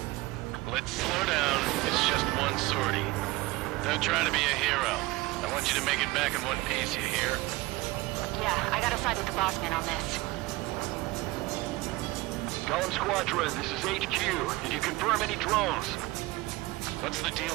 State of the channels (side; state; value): left; quieter; 20.8 dB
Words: Let's slow down. It's just one sortie. Don't try to be a hero. I want you to make it back in one piece, you hear? Yeah, I gotta side with the boss man on this. Golem Squadron, this is HQ. Did you confirm any drones? What's the